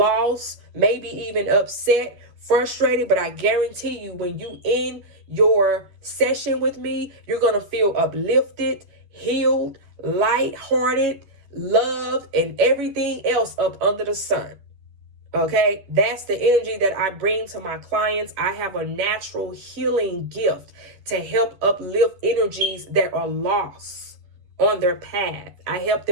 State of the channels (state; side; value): late; left; 10 ms